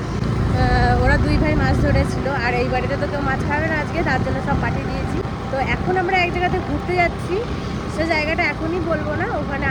ওরা দুই ভাই মাছ ধরেছিল, আর এই বাড়িতে তো কেউ মাছ খাবে না আজকে, তার জন্য সব পাঠিয়ে দিয়েছি। তো এখন আমরা এক জায়গাতে ঘুরতে যাচ্ছি, সে জায়গাটা এখনই বলবো না, ওখানে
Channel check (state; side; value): identical; both; correlation 1.00